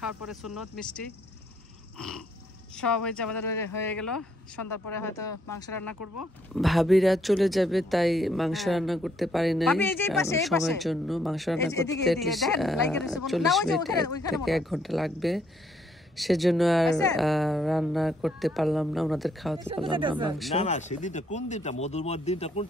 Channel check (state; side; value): normal; both; correlation 0.70